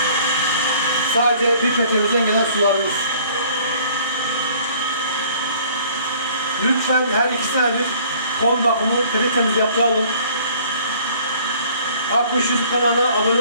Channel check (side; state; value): both; inverted; correlation -0.55